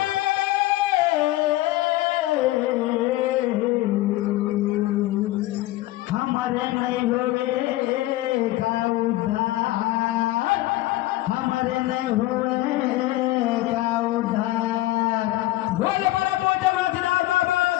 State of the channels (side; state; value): right; quieter; 17.1 dB